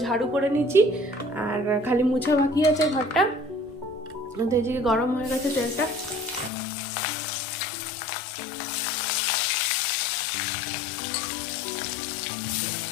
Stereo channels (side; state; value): right; drops out; at 6.5 s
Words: ঝাড়ু করে নিচ্ছি, আর খালি মুছা বাকি আছে ঘরটা। তো এই যে গরম হয়ে গেছে তেলটা।